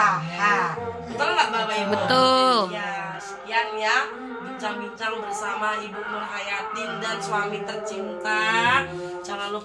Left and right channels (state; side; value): identical; both; correlation 1.00